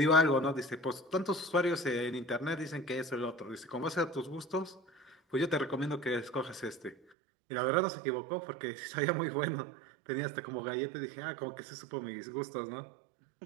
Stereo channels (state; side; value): drops out; left; at 7.0 s